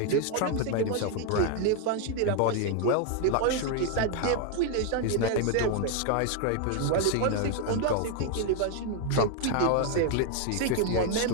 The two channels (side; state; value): both; different; correlation 0.01